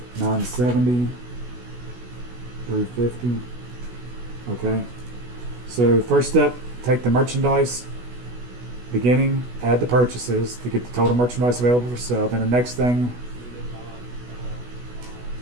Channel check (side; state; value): left; late; 16 ms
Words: $970, $350. Okay. So first step, take the merchandise beginning, add the purchases to get the total merchandise available for sale. Then the next thing,